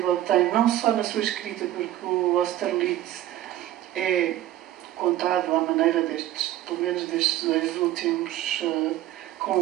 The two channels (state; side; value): quieter; left; 13.7 dB